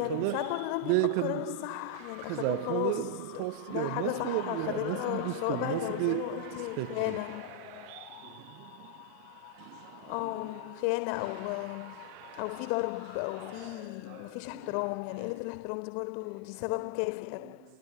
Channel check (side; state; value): both; different; correlation 0.00